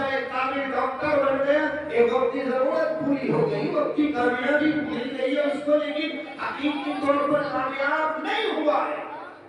ایک کامل ڈاکٹر بن گیا، ایک وقتی ضرورت پوری ہو گئی، وقتی کامیابی مل گئی ہے اس کو، لیکن حقیقی طور پر کامیاب نہیں ہوا ہے.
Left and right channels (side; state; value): both; identical; correlation 1.00